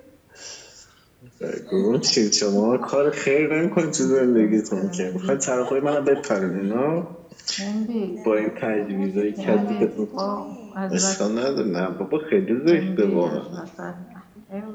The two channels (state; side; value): identical; both; correlation 1.00